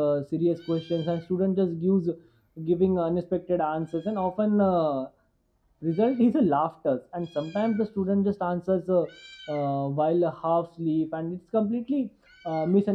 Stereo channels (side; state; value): both; identical; correlation 1.00